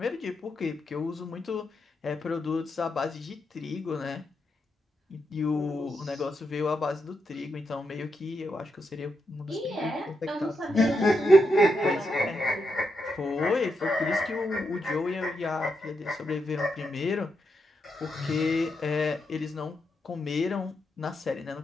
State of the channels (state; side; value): normal; both; correlation 0.83